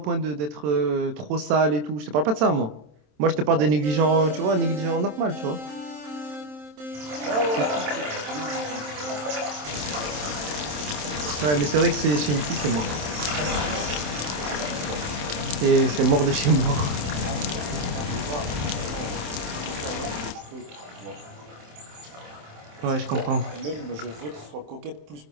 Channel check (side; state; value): left; late; 27 ms